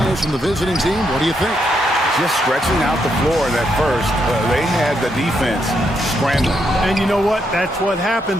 from the visiting team, what do you think? Just stretching out the floor in that first. They had the defense scrambling. And you know what? That's what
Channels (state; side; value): normal; both; correlation 0.78